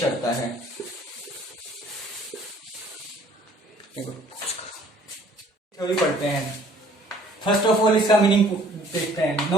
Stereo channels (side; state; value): both; normal; correlation 0.57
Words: करता है। थ्योरी पढ़ते हैं। फर्स्ट ऑफ ऑल इसका मीनिंग देखते हैं।